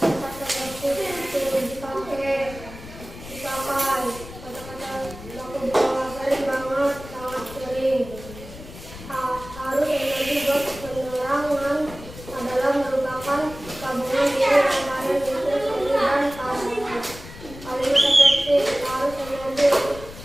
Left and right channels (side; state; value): left; noise; rumble, 15 dB below the sound